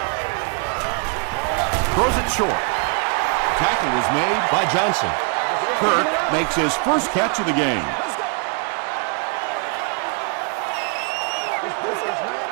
Throws it short. Tackle was made by Johnson. Kirk makes his first catch of the game.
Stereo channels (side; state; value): left; quieter; 33.6 dB